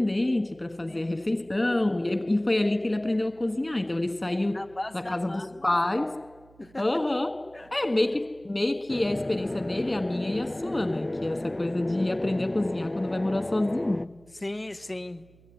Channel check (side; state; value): right; noise; hum, 27 dB below the sound